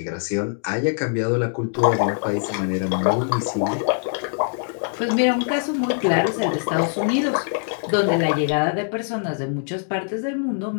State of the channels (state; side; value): silent; right; digital silence